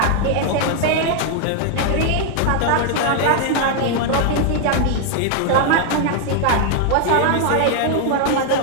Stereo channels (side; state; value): both; different; correlation 0.00